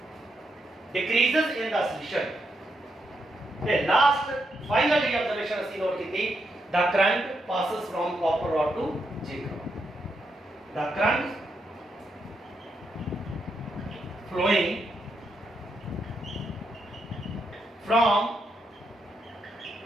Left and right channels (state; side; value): normal; both; correlation 0.81